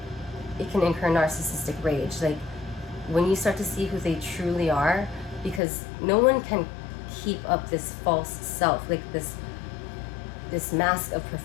It can incur narcissistic rage. Like, when you start to see who they truly are, because no one can keep up this false self, like this mask of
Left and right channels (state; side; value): drops out; right; at 5.6 s